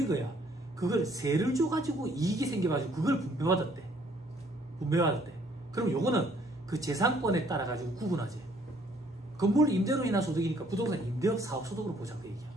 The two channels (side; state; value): both; normal; correlation 0.63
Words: 거야. 그걸 세를 줘가지고 이익이 생겨가지고 그걸 분배받았대. 그럼 요거는 그 재산권에 따라 가지고 구분하지. 건물 임대로 인한 소득이니까 부동산 임대업 사업소득으로 보자 그 얘기야.